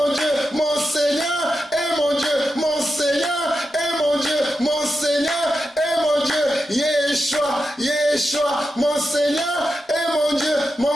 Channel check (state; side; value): normal; both; correlation 0.89